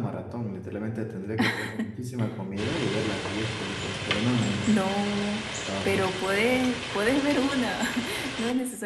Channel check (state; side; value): identical; both; correlation 1.00